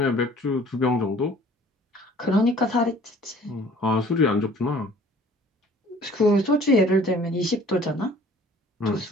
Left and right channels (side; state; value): both; normal; correlation 0.52